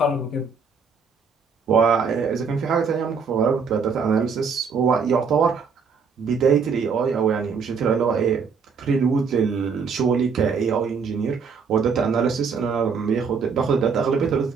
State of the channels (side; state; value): left; quieter; 5.6 dB